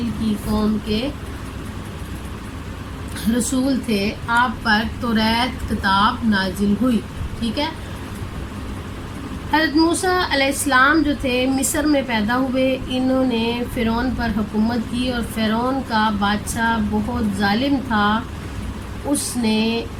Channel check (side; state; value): both; identical; correlation 1.00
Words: کی قوم کے رسول تھے۔ آپ پر توریت کتاب نازل ہوئی، ٹھیک ہے۔ حضرت موسیٰ علیہ السلام جو تھے مصر میں پیدا ہوئے۔ انہوں نے فرعون پر حکومت کی اور فرعون کا بادشاہ بہت ظالم تھا۔ اس نے